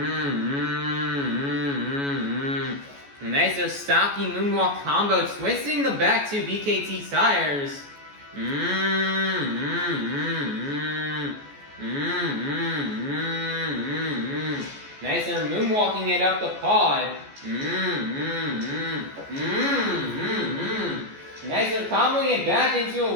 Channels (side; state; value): left; late; 14 ms